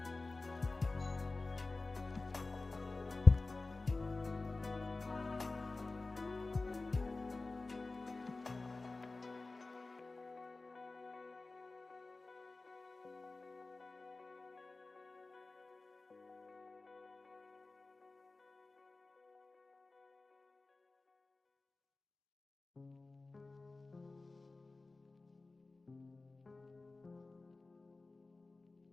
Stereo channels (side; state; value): right; quieter; 3.4 dB